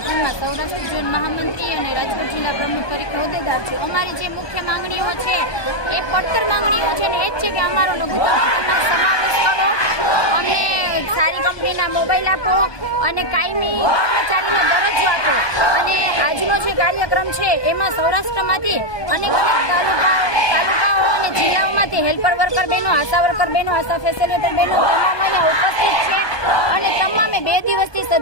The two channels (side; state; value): right; late; 1.2 ms